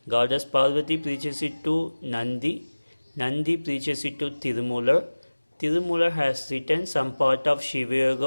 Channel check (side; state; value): both; inverted; correlation -1.00